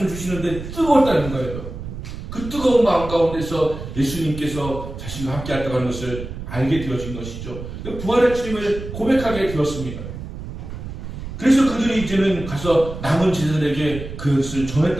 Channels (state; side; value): noise; right; rumble, 9 dB below the sound